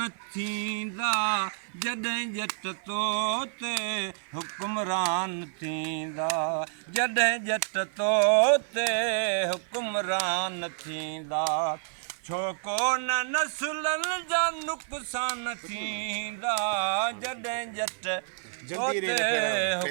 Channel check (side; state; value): left; silent; 59 dB below the other